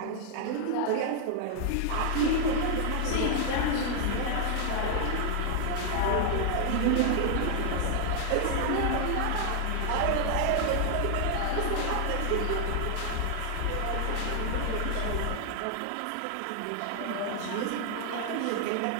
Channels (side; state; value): both; different; correlation 0.00